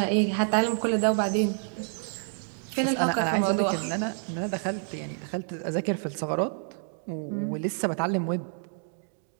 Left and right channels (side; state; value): left; silent; 58 dB below the other